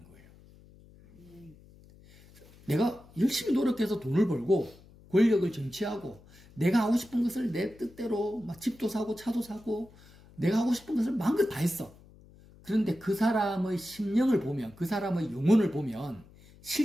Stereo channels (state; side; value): noise; left; hum, 24 dB below the sound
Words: 거예요. 내가 열심히 노력해서 돈을 벌고 권력을 쟁취하고 내가 하고 싶은 것을 내 뜻대로 막 집도 사고 차도 사고 내가 하고 싶은 것을 마음껏 다 했어. 그런데 그 사람의 심령을 보면, 그 사람의 영혼을 보면